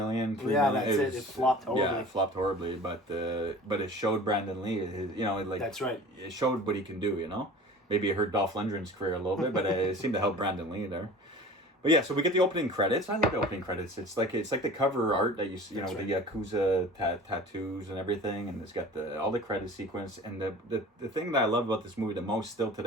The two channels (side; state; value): both; normal; correlation 0.41